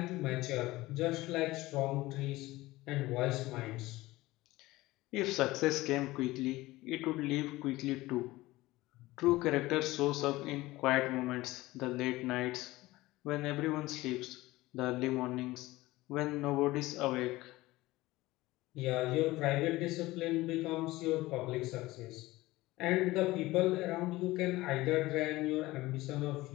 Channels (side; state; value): right; quieter; 18.8 dB